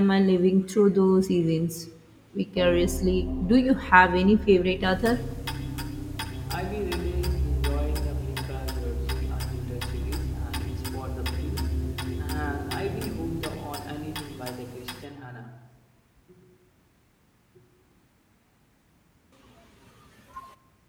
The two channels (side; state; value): both; identical; correlation 1.00